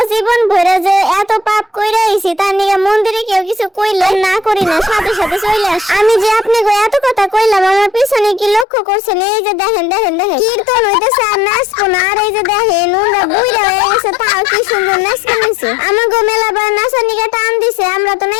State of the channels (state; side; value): drops out; right; at 8.7 s